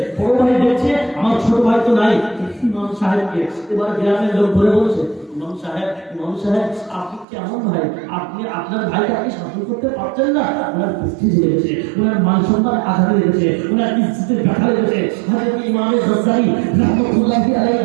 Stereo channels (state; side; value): drops out; left; at 7.2 s